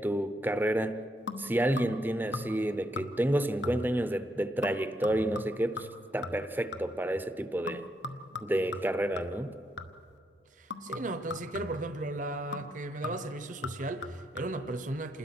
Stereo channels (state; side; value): normal; both; correlation 0.78